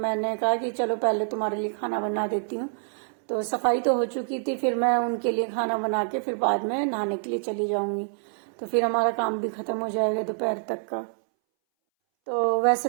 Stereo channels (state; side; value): silent; left; 61 dB below the other